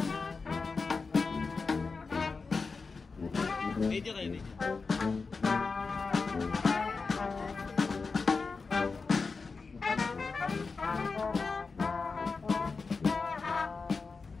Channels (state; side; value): quieter; right; 4.5 dB